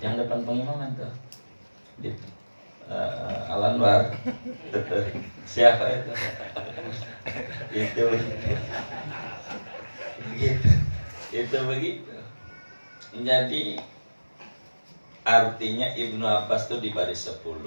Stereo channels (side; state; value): both; inverted; correlation -1.00